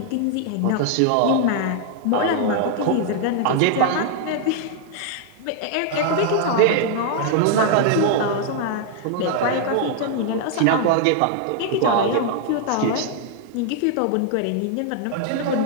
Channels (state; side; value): different; both; correlation 0.00